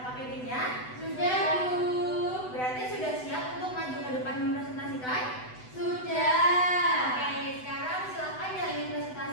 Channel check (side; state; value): right; late; 8.0 ms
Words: Sudah, Bu. Berarti sudah siap untuk maju ke depan mempresentasikan? Sudah. Oke, sekarang silakan yang ingin